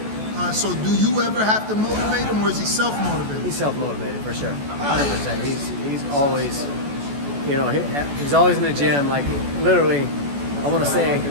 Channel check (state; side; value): late; left; 14 ms